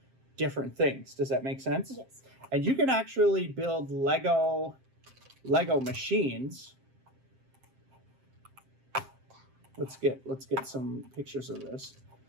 different things. Does that make sense? Yes. And you can actually build Lego machines let's get some pictures of this.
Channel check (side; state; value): left; late; 7.6 ms